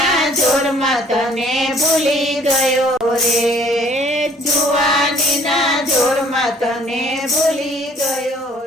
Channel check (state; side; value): normal; both; correlation 0.57